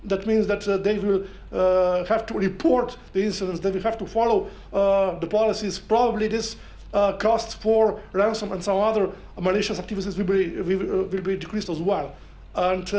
that means that they will have to report the incidents, they will have to follow the policies. Probably this costs for ransom and some other malicious activities will be decreased as well. And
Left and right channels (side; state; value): both; identical; correlation 1.00